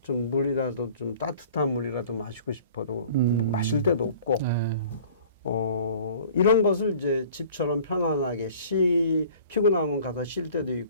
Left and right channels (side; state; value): both; inverted; correlation -0.49